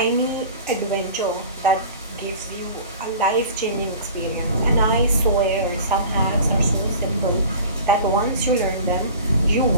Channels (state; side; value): inverted; both; correlation -0.41